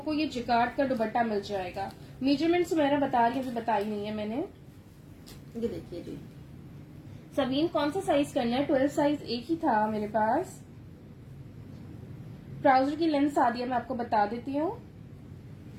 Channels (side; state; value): both; identical; correlation 1.00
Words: ये जिकार्ड का दुपट्टा मिल जाएगा। मेजरमेंट मेरा बता रही है, बताई नहीं है मैंने। ये देखिए जी, सबीन कौन सा साइज करना है? 12 साइज एक ही था मेरे पास। ट्राउजर की लेंथ सादिया मैं आपको बता देती हूँ।